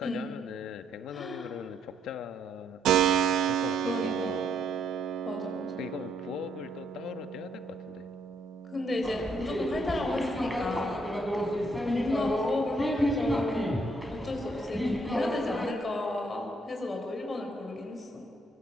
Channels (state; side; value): normal; both; correlation 0.72